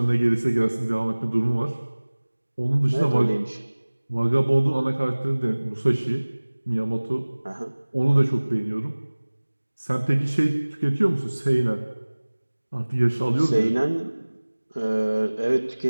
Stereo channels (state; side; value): inverted; both; correlation -1.00